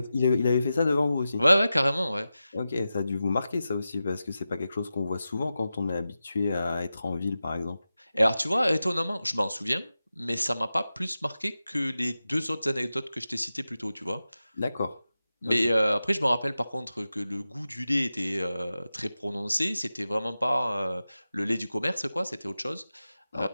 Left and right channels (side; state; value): both; inverted; correlation -0.93